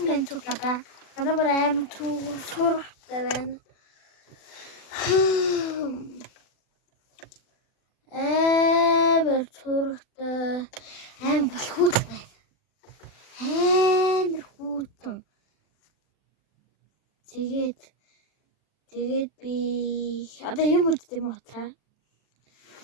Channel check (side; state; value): right; late; 40 ms